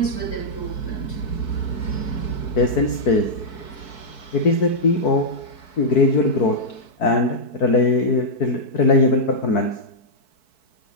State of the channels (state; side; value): late; right; 4.6 ms